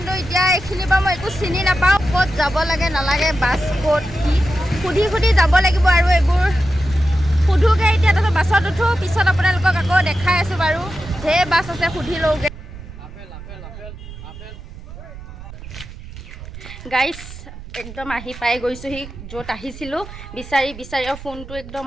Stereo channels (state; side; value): noise; right; rumble, 14 dB below the sound